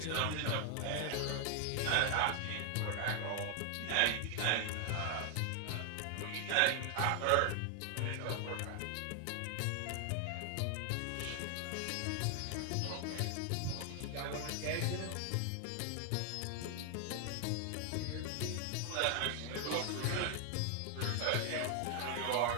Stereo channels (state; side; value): different; both; correlation 0.00